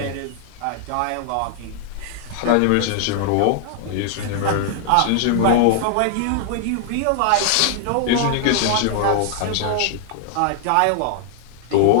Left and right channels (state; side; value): different; both; correlation 0.00